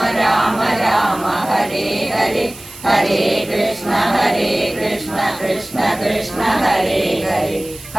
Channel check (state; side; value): noise; right; hiss, 18 dB below the sound